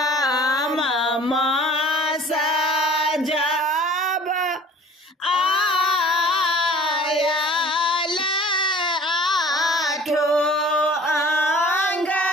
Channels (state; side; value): normal; both; correlation 0.48